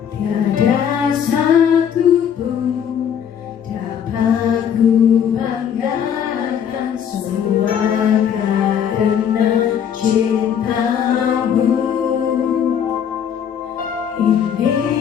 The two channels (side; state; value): right; quieter; 8.4 dB